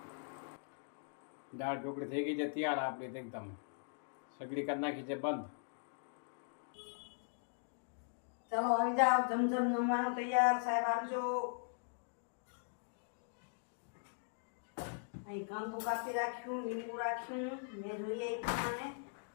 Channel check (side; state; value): right; silent; digital silence